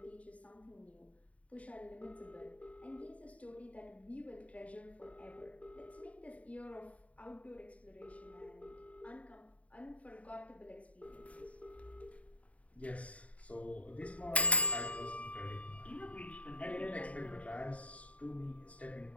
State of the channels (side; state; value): right; late; 0.067 ms